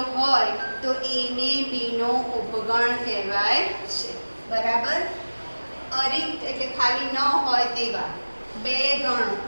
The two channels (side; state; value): both; inverted; correlation -1.00